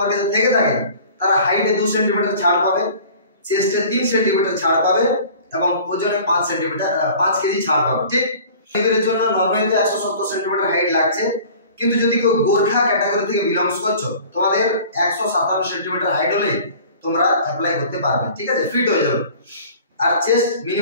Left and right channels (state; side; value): inverted; both; correlation -0.46